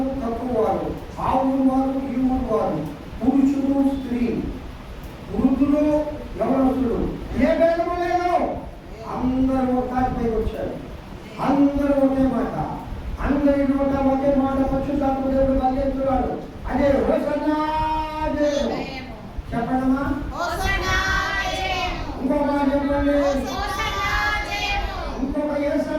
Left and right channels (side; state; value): both; identical; correlation 1.00